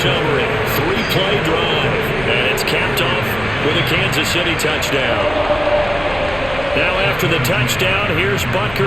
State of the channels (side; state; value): left; noise; hum, 15 dB below the sound